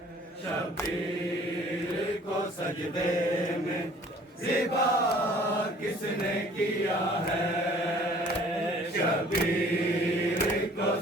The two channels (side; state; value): both; normal; correlation 0.52